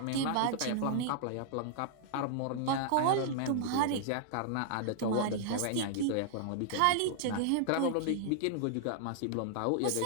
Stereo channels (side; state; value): both; different; correlation -0.01